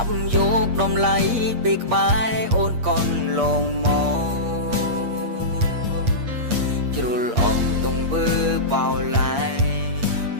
ប់យកដំឡៃពីក្បែរអូនកូនលងមកជ្រុលអងទងវើបោឡាយ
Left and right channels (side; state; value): left; late; 8.5 ms